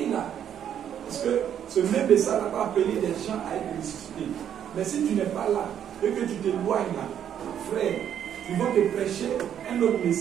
là. Parce que ce même message n'a pas appelé les gens à être ressuscités. Mais si tu n'es pas là, et que tu t'éloignes là, frère, ils vont te prêcher un autre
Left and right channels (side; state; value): left; quieter; 9.5 dB